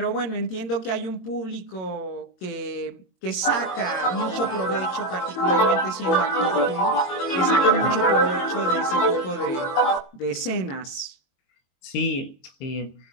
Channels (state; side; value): late; right; 22 ms